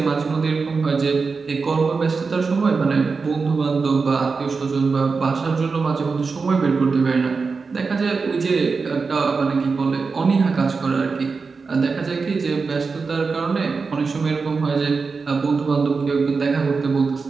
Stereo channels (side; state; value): left; quieter; 4.7 dB